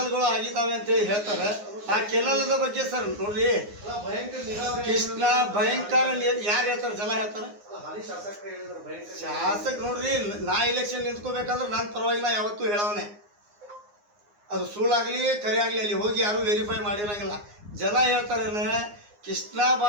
ಆಗಿದ್ದಾವೆ ಅಂತೇಳಿ ಹೇಳ್ತಾರೆ. ಆ ಕೆನಲ್ದ ಬಗ್ಗೆ ಸರ್ ನೋಡ್ರಿ, ಕೃಷ್ಣ ಭಯಂಕರ ಯಾರು ಹೇಳ್ತಾರೆ? ಜನ ಹೇಳ್ತಾರೆ. ಶಾಸಕ ನೋಡ್ರಿ, ನಾ ಇಲೆಕ್ಷನ್ ನಿಂತ್ಕೋಬೇಕಾದ್ರೆ ನನ್ನ ಪರವಾಗಿ ನಾ ಯಾವತ್ತೂ ಹೇಳವನೆ. ಅದು ಸುಳ್ಳಾಗಲಿ ಕರೆ ಆಗಲಿ ಅಲ್ಲಿ ಹೋಗಿ ಯಾರು ವೆರಿಫೈ ಮಾಡಿರಂಗಿಲ್ಲ. ಜನ ಹೇಳ್ತಾರೆ ಕೃಷ್ಣ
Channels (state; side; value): late; left; 9.7 ms